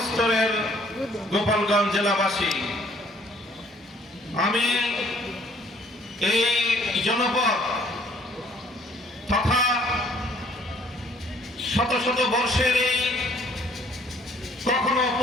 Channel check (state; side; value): normal; both; correlation 0.60